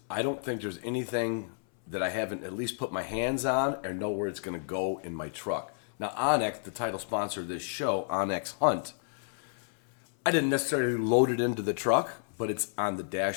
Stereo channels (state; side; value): silent; right; 57 dB below the other